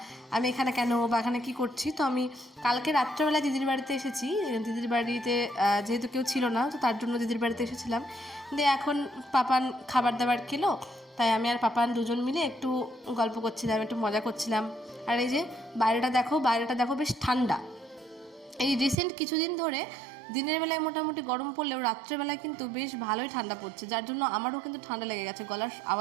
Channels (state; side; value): drops out; left; at 18.9 s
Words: আমি এখানে কেন বা এখানে কী করছি। তো আমি কালকে রাত্রেবেলা দিদির বাড়িতে এসেছি। দিদির বাড়িতে যেহেতু কেউ ছিল না, তো তার জন্য দিদির বাড়িতে এসেছিলাম। দিয়ে এখন পাপান খাবার দাবার খেলো, তাই আমি আর পাপান দুজন মিলে একটু গল্প করছিলাম, একটু মজা করছিলাম। আর এই যে বাইরেটা দেখো বেশ ঠান্ডা। এই রিসেন্ট কিছুদিন ধরে দিনের বেলায় মোটামুটি গরম পড়লেও রাত্রেবেলায় কিন্তু বেশ ভালোই ঠান্ডা পড়ছে, যার জন্য আমারও কিন্তু ঠান্ডা লেগে গেছে। গলার